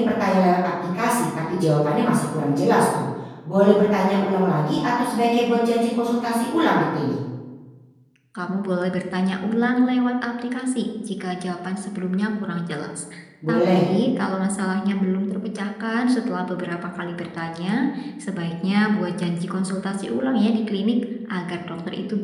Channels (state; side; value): identical; both; correlation 1.00